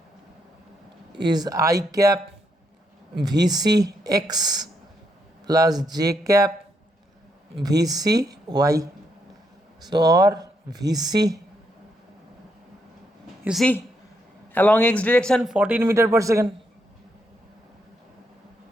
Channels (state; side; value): normal; both; correlation 0.78